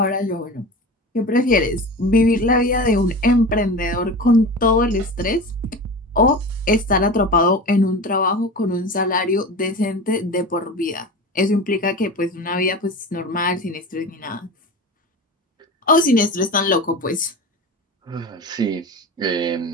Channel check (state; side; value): normal; both; correlation 0.31